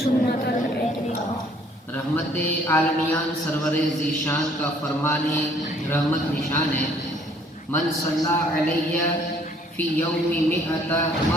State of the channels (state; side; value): normal; both; correlation 0.60